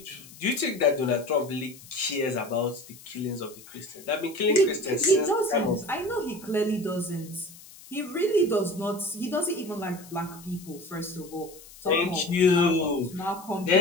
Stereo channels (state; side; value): noise; left; hiss, 20 dB below the sound